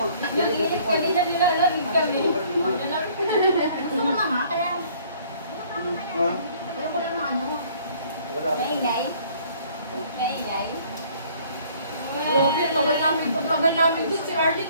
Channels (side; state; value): both; inverted; correlation -0.57